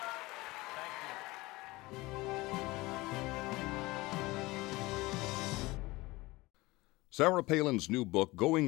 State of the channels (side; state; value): right; quieter; 21.1 dB